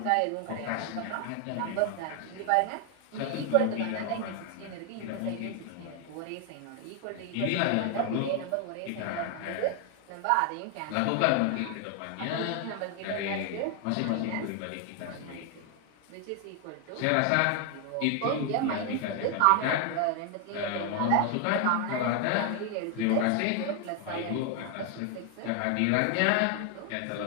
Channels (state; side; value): different; both; correlation 0.00